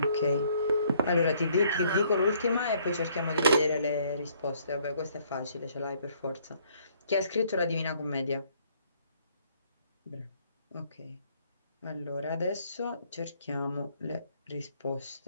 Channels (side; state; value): both; inverted; correlation -0.64